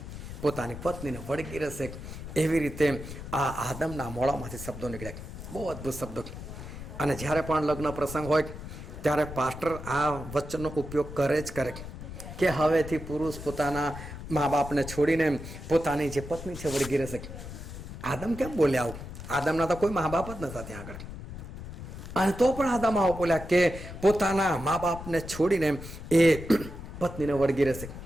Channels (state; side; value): noise; left; rumble, 11 dB below the sound